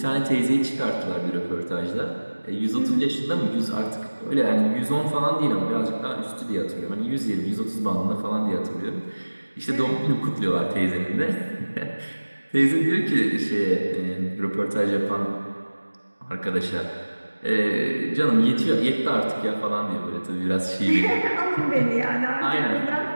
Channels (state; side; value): inverted; both; correlation -1.00